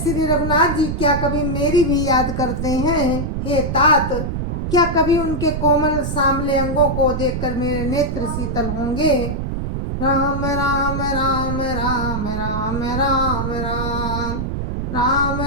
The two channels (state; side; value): noise; right; rumble, 2 dB below the sound